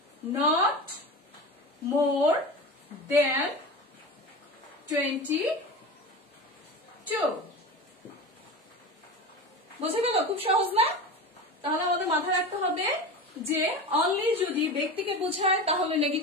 নট মোর দেন 22। বুঝে গেল? খুব সহজ না? তাহলে আমাদের মাথায় রাখতে হবে যে অনলি যদি ব্যক্তিকে বোঝায় তাহলে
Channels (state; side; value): normal; both; correlation 0.28